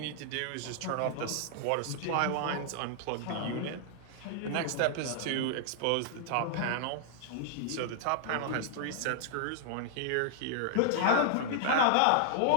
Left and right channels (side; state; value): both; different; correlation -0.01